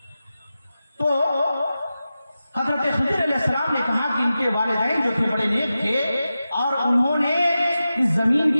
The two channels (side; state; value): both; inverted; correlation -0.93